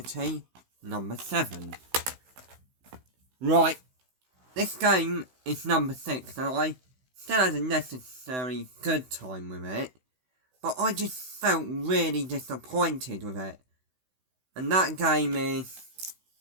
number 7. Right, this game is number 6, and I still had a necessary good time with it, but I just felt really disappointed with it. And that game is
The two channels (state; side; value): late; left; 16 ms